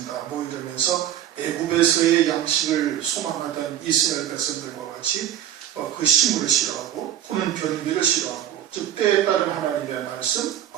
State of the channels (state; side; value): quieter; left; 11.1 dB